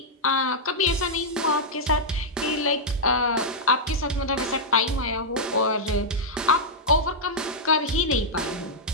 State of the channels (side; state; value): both; normal; correlation -0.07